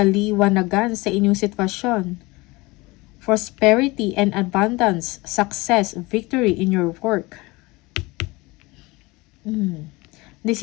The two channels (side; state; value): right; quieter; 23.0 dB